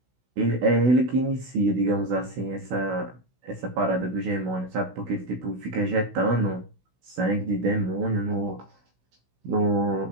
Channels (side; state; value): left; late; 16 ms